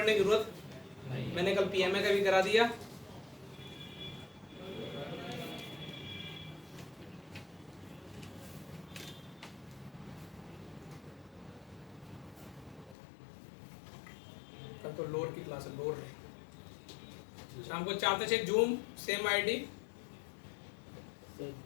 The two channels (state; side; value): drops out; right; at 13.0 s